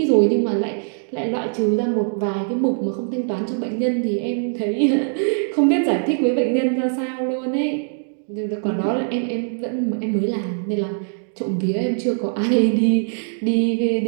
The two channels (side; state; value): left; silent; digital silence